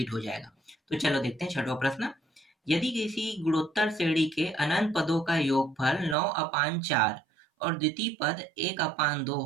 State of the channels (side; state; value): left; drops out; at 6.2 s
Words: हो जाएगा। तो चलो देखते हैं छठवां प्रश्न। यदि किसी गुणोत्तर श्रेणी के अनंत पदों का योगफल 9/4 और द्वितीय पद 1/2